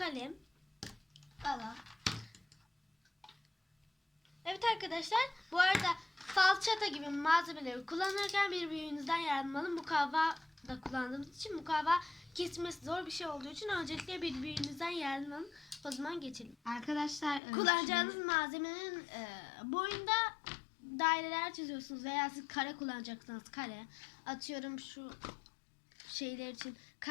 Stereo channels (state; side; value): drops out; right; at 17.4 s